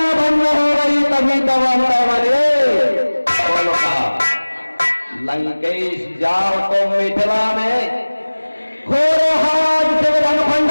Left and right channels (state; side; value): inverted; both; correlation -1.00